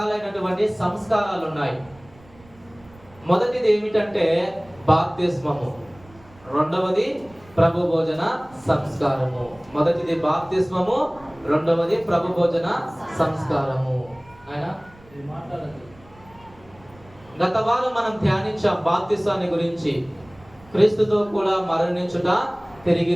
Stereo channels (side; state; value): right; noise; rumble, 26 dB below the sound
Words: సంస్కారాలు ఉన్నాయి. మొదటిది ఏమిటంటే బాప్తిస్మము, రెండవది ప్రభు భోజన సంస్కారము. మొదటిది బాప్తిస్మము, రెండవది ప్రభు భోజన సంస్కారము. ఆయన గత వారం మనం ధ్యానించాం బాప్తిసాన్ని గురించి. క్రీస్తుతో కూడా మరణించుట, తిరిగి